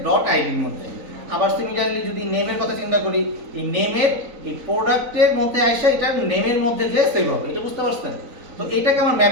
ডট আইডির মধ্যে। আবার সিমিলারলি যদি নেমের কথা চিন্তা করি, এই নেমের এই প্রোডাক্টের মধ্যে আসে এটা নেমের মধ্যে যে সেভ হবে। এটা বুঝতে পারছেন? তো এটাকে আমার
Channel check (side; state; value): left; late; 3.9 ms